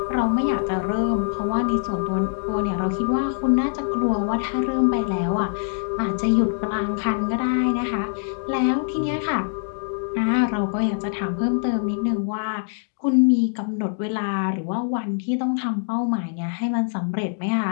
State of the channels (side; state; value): right; silent; digital silence